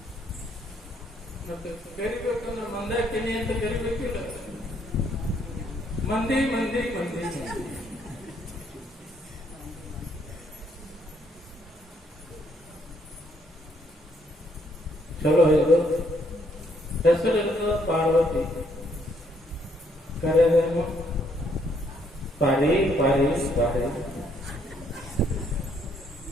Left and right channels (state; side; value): normal; both; correlation 0.69